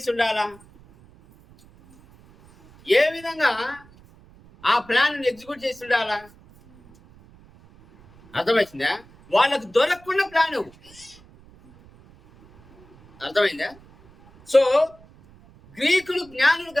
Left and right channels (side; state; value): right; noise; rumble, 26 dB below the sound